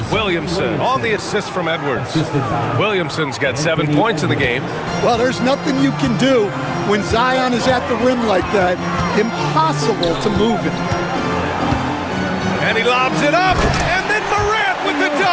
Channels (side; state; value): both; identical; correlation 1.00